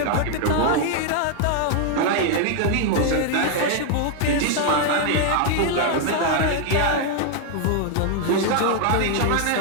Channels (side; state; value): both; different; correlation 0.00